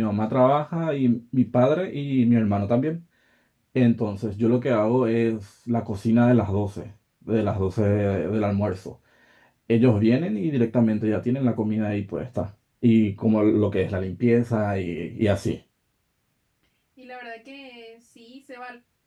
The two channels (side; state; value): both; identical; correlation 1.00